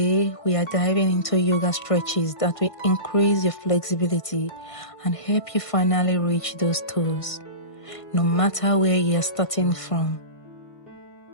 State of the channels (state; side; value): late; right; 1.5 ms